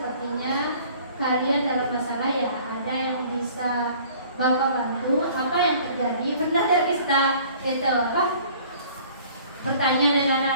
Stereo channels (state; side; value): inverted; both; correlation -0.52